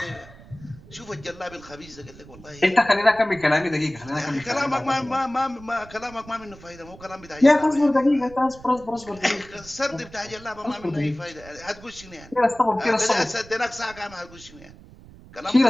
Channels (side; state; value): right; noise; rumble, 20 dB below the sound